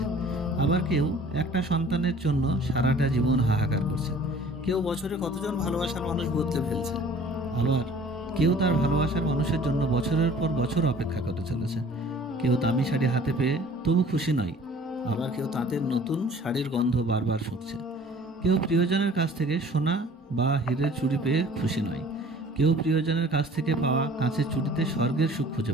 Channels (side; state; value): both; normal; correlation 0.50